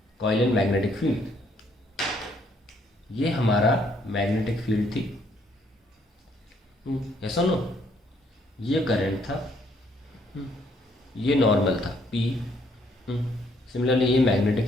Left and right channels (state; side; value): normal; both; correlation 0.68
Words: coil and magnetic field. ये हमारा मैग्नेटिक फील्ड थी, ऐसा नो, ये करंट था, ये नॉर्मल था P। सिमिलरली ये